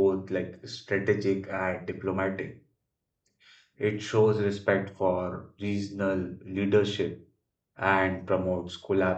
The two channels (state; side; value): identical; both; correlation 1.00